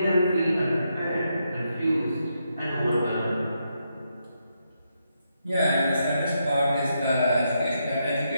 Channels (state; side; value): inverted; both; correlation -0.81